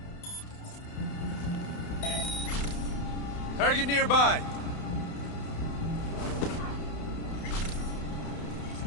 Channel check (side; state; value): right; late; 31 ms